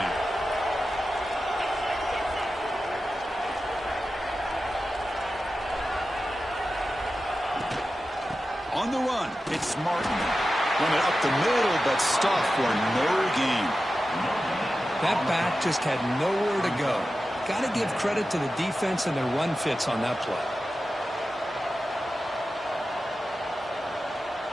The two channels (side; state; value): both; normal; correlation 0.93